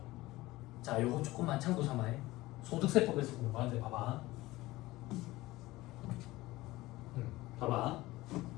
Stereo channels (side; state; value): right; quieter; 18.7 dB